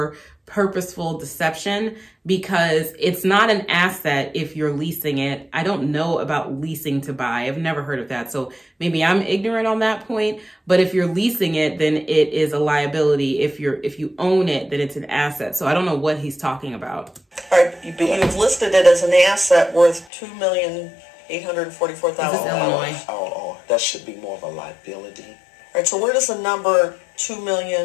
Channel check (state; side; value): drops out; right; at 20.1 s